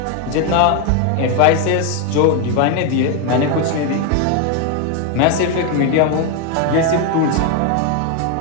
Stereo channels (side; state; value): both; different; correlation 0.01